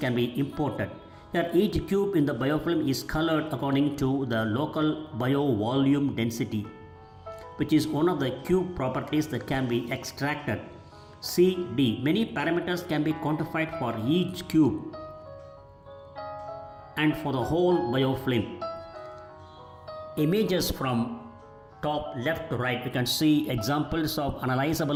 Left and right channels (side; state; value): both; identical; correlation 1.00